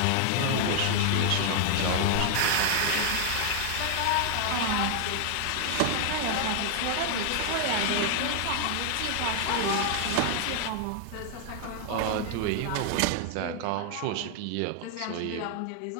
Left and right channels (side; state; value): both; different; correlation 0.00